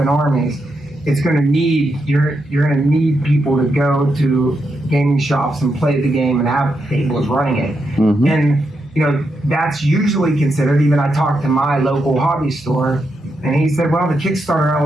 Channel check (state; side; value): normal; both; correlation 0.83